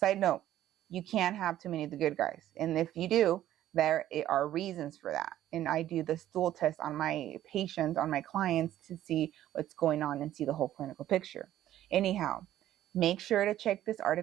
note, you can't have too many of the good guys. And if you do, there are reasons for that. And I do the stool test on my patients, on my clients, to see what's going on and see the whole clinical picture. Anyhow, Make sure to check this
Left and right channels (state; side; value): quieter; left; 12.8 dB